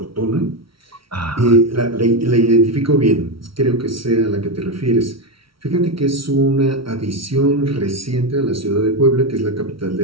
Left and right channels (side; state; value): left; late; 0.75 ms